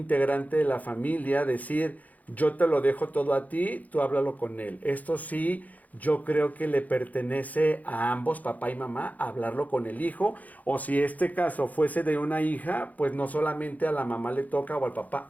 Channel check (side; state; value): right; late; 0.078 ms